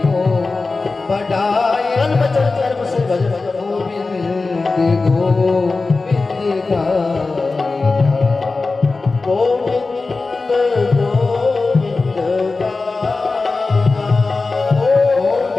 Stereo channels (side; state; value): right; quieter; 3.8 dB